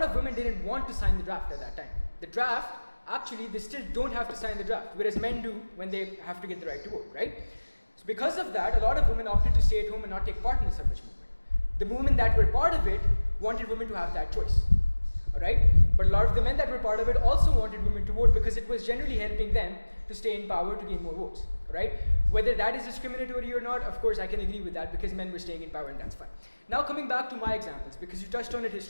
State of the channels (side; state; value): both; inverted; correlation -1.00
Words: of women didn't want to sign the draft at that time. The draft, actually, they still don't have to sign the draft, whereas men do when they have to get the right to vote, right? So because of that, a lot of women opted to stay at home and not take part in the suffrage movement. The women that were part of it wanted women to have that choice, all right? But a lot of the men that were part of it also wanted women to vote because it was generally helping them to stay in power to gain more votes, right? Whether that is discriminatory or not, of course, I can agree with that because men were staying in power and that's fine. Now coming back to my examples, because you touched on it